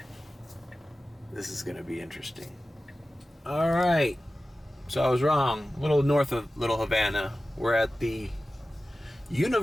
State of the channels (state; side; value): normal; both; correlation 0.95